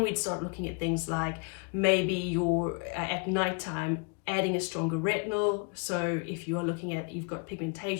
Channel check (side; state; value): right; quieter; 34.1 dB